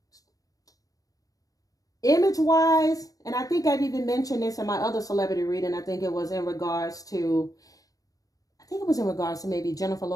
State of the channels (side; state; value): right; late; 0.17 ms